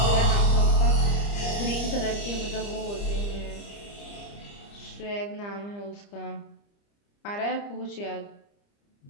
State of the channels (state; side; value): late; right; 30 ms